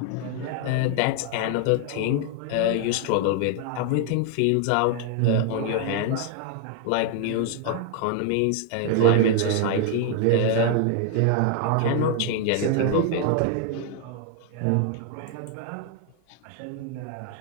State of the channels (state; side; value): different; both; correlation 0.00